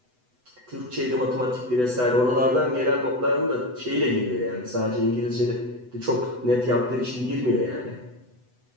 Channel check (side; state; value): left; late; 8.0 ms